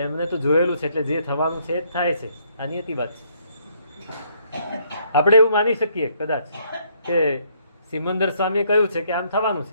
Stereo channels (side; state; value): both; inverted; correlation -0.68